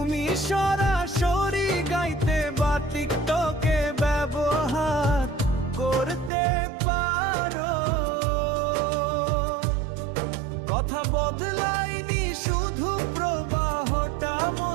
সরাসরি গাইতে বা টিকটকে ব্যবহার করতে পারো। কথা বদলাইনি, শুধু প্রবাহটা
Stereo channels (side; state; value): left; drops out; at 6.3 s